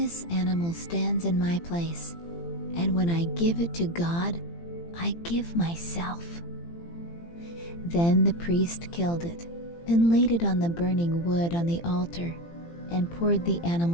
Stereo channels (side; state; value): right; late; 18 ms